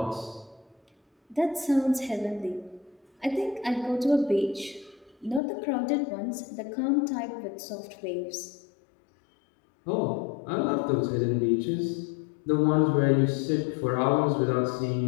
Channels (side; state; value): right; drops out; at 5.4 s